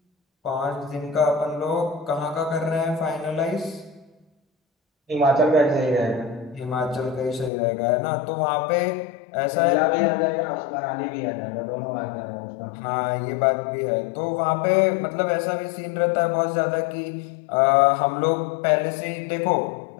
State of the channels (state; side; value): drops out; right; at 7.5 s